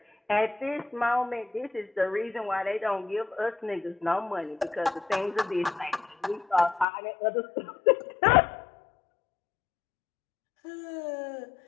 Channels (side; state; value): right; drops out; at 6.9 s